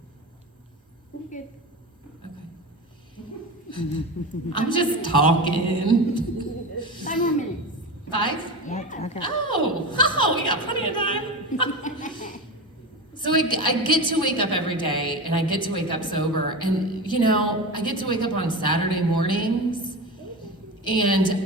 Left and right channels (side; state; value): both; normal; correlation 0.25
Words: You're good. Okay. I'm just talking. 5 more minutes. 5? Okay. Oh, we got plenty of time. So I get to wake up every day, and I get to wake up sober. And, I get to wake up on Saturday mornings,